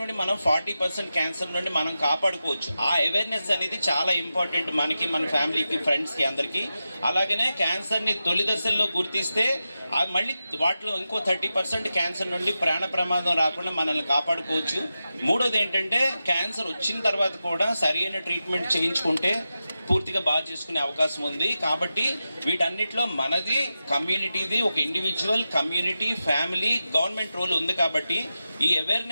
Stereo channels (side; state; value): both; inverted; correlation -0.91